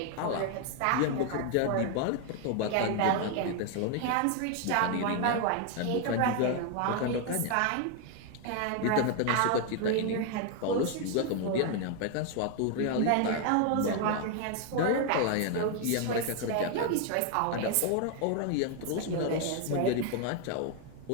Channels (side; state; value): both; different; correlation 0.01